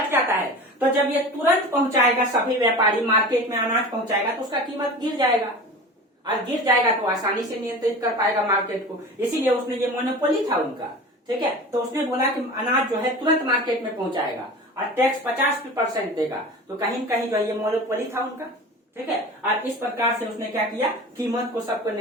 है। तो जब ये तुरंत पहुंचाएगा, सभी व्यापारी मार्केट में अनाज पहुंचाएगा तो उसका कीमत गिर जाएगा, और गिर जाएगा तो आसानी से नियंत्रित कर पाएगा मार्केट को। इसीलिए उसने ये मोनोपोली था उनका। ठीक है, तो उसने बोला कि अनाज जो है तुरंत मार्केट में पहुंचाएगा और टैक्स 50% देगा, तो कहीं न कहीं जो है ये मोनोपोली था उनका। ठीक है, और इस प्रकार से उसने क्या किया, कीमत को सबको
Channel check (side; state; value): both; normal; correlation 0.35